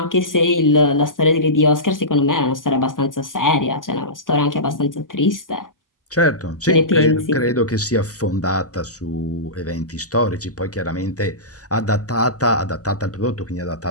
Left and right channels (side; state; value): both; normal; correlation -0.19